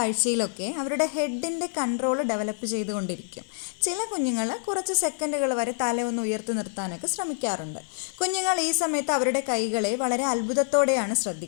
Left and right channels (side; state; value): right; silent; digital silence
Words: അവരുടെ ഹെഡിൻ്റെ കൺട്രോൾ ഡെവലപ്പ് ചെയ്തുകൊണ്ടിരിക്കും. ചില കുഞ്ഞുങ്ങൾ കുറച്ച് സെക്കൻഡുകൾ വരെ തല ഒന്ന് ഉയർത്തി നിർത്താനൊക്കെ ശ്രമിക്കാറുണ്ട്. കുഞ്ഞുങ്ങൾ ഈ സമയത്ത് അവരുടെ കൈകളെ വളരെ അത്ഭുതത്തോടെയാണ്